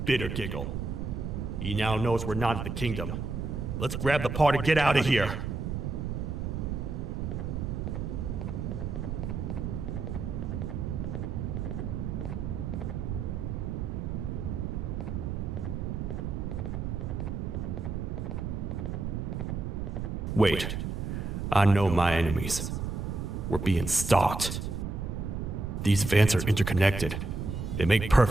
Bitter Giggle. He now knows we're not at the kingdom. Let's grab the part and get out of here. Wait, I know my enemies. We're being stalked. These vents are interconnected. They make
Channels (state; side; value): noise; right; rumble, 3 dB below the sound